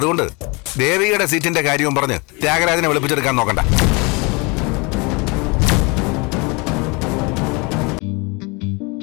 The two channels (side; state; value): right; quieter; 28.5 dB